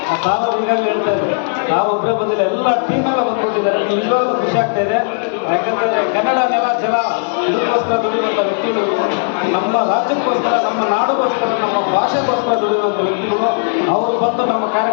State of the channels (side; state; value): right; silent; digital silence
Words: ಆ ತಾವು ಈಗಾಗಲೇ ಹೇಳ್ತಾ ಇದ್ದಾರೆ, ನಾವು ಒಬ್ಬರೇ ಬಂದಿಲ್ಲ, ಎಲ್ಲ ಟೀಮೆಲ್ಲ ಬಂದ್ಕೊಟ್ಟಿದ್ದಾರೆ. ನಿಜವಾಗ್ಲೂ ಖುಷಿ ಆಗ್ತಾ ಇದೆ. ಯಾಕಂದರೆ ಕನ್ನಡ ನೆಲ ಜಲ ಇದಕ್ಕೋಸ್ಕರ ದುಡಿಯುವಂಥ ವ್ಯಕ್ತಿಗಳು, ನಮ್ಮ ರಾಜ್ಯಕ್ಕೋಸ್ಕರ, ನಮ್ಮ ನಾಡಿಗೋಸ್ಕರ, ನಮ್ಮ ಭಾಷೆಗೋಸ್ಕರ ದುಡಿಯುವಂಥ ವ್ಯಕ್ತಿಗಳು ಅವರು ಬಂದು ನಮ್ಮ